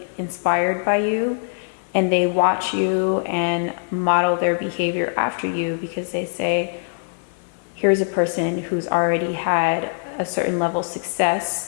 inspired by you, and they watch you and model their behavior after you because they say, here's a person who's already had a certain level of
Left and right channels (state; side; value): silent; right; digital silence